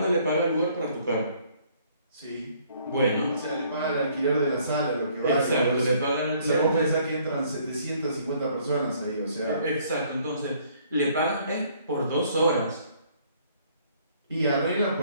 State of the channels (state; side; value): inverted; both; correlation -0.62